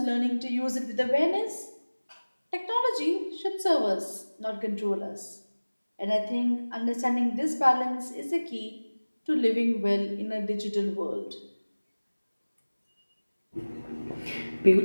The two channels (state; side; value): inverted; both; correlation -1.00